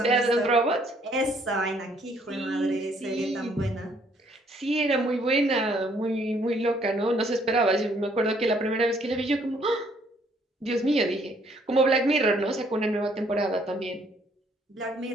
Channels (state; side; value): normal; both; correlation 0.65